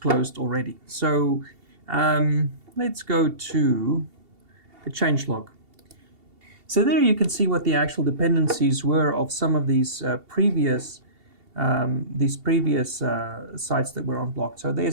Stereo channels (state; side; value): late; left; 2.7 ms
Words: already. So let's go to the changelog. So there you can see what the actual dependencies were of some of these previous sites that were unblocked. So